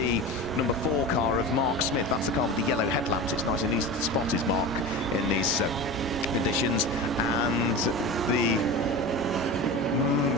number 4 car of Mark Smith. That's the car with the yellow headlamps. It's nice and easy to spot his mark in these conditions. And the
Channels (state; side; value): normal; both; correlation 0.29